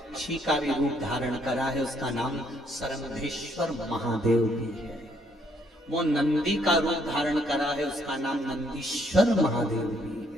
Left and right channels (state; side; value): normal; both; correlation 0.69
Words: का भी रूप धारण करा है, उसका नाम सरंधेश्वर महादेव भी है। वो नंदी का रूप धारण करा है, उसका नाम नंदीश्वर महादेव भी